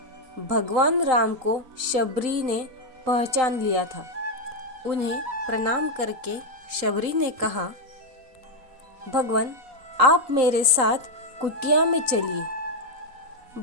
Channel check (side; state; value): left; late; 3.8 ms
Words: भगवान राम को शबरी ने पहचान लिया था। उन्हें प्रणाम करके शबरी ने कहा, भगवान, आप मेरे साथ कुटिया में चलिए।